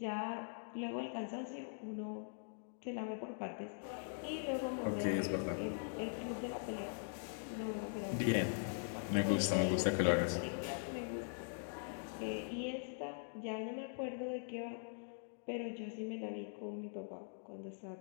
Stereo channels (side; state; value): right; silent; digital silence